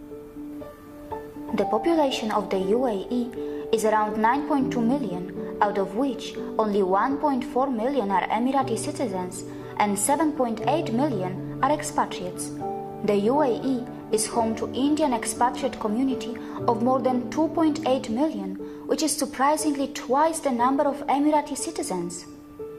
The population of the UAE is around 9.2 million, out of which only 1.4 million are Emirati citizens and 7.8 million are expatriates. The UAE is home to Indian expatriate community of more than 2.8 million, which is surprisingly twice the number of Emirati citizens.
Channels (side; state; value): both; identical; correlation 1.00